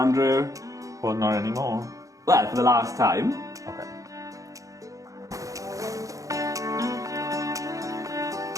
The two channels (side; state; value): left; late; 0.16 ms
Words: Andrew. Well, not anymore. Well, for the last time. Okay.